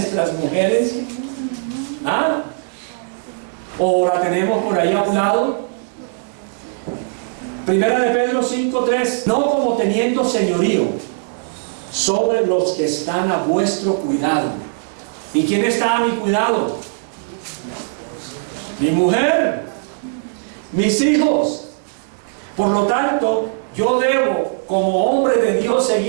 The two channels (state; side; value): silent; left; digital silence